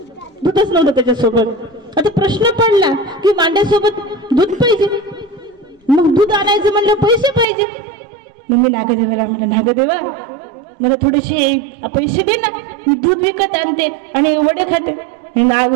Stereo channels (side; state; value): left; drops out; at 7.5 s